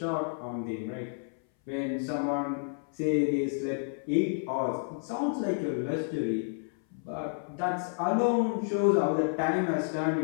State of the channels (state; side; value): silent; right; 58 dB below the other